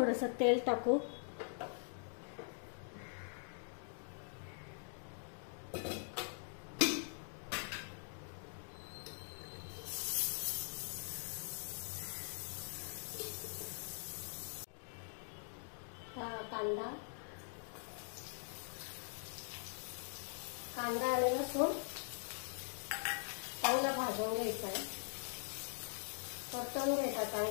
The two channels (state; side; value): silent; right; digital silence